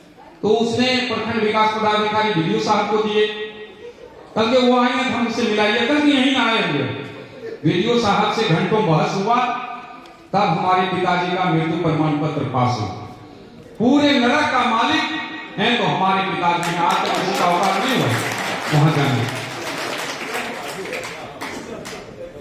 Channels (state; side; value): identical; both; correlation 1.00